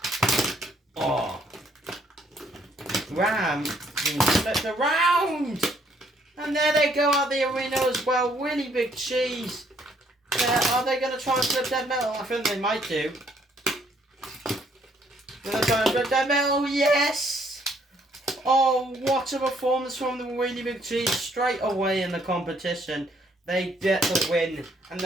Oh. Ram being flipped around. And there they go out the arena as well. Really Big Cheese. Are they going to try and flip Dead Metal? I think they might do. Going to try and flip Dead Metal. Yes! Oh, what a performance from the Really Big Cheese straight away in the competition. They get the win. And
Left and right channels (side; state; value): both; normal; correlation 0.67